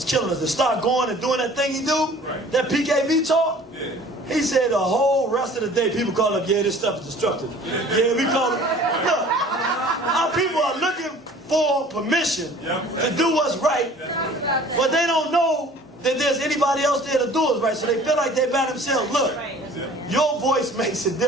killing us. They start going and doing that thing he do, that PKV talk. He said the whole rest of the day people call up, yeah, this stuff is destructive. Yeah, we call it. Look, our people are looking for permission to do what's right, but they don't know that there's anybody else there to do it right, so they feel like they're by themselves. Look, your voice makes a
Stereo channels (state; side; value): normal; both; correlation 0.49